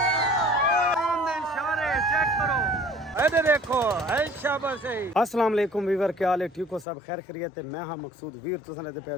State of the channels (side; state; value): right; drops out; at 6.9 s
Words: देखो अस्सलाम वालेकुम वीवर, क्या हाल है? ठीक हो सब? खैर खैरियत है। मैं हाँ मकसूद वीर, तुसां दे पे